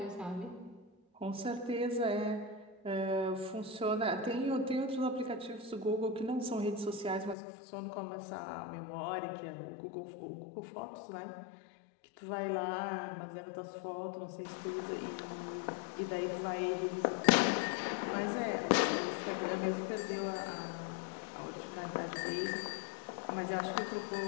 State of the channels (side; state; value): right; drops out; at 7.4 s